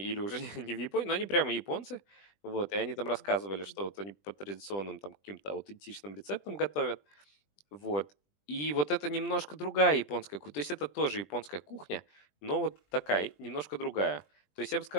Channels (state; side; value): late; right; 20 ms